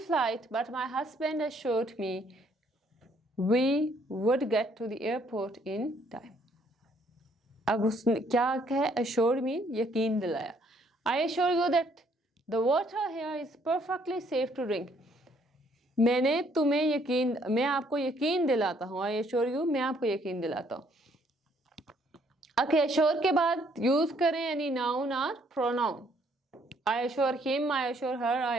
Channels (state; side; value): normal; both; correlation 0.66